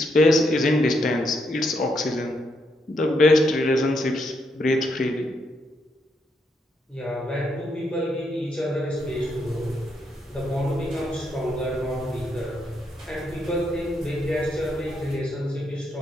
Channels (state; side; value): normal; both; correlation 0.78